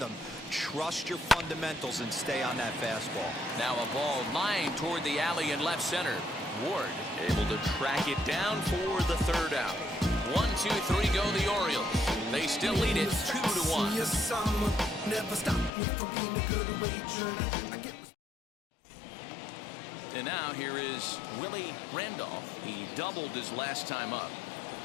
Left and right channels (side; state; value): right; drops out; at 15.7 s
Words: Trust your fundamentals and stay on that fastball. Now a ball lined toward the alley in left center. Ward able to track it down for the 3rd out. 1, 2, 3 go the Orioles. They still lead it 2-1. And now here is Willie Randolph. He doubled his last time up.